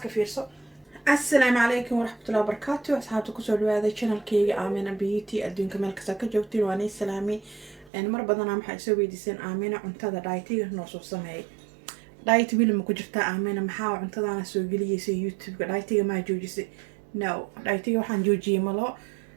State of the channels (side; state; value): left; drops out; at 7.9 s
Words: fiirso. Assalaamu alaykum warahmatullahi wabarakatuh. asxaabta ku soo dhawaada channelkayga Aamina Beauty adduunka meel kasta ka joogtiin waan idin salaamay mar badan waxaan soo weydiisan Aamina cuntada diet-iga noo soo sameeyay diet wili ma ku jirtaa Aamina maxaa cuntadana soo galiyay YouTube-ga diet-iga ma joojisay no diet-iga waxaan joojiyay malo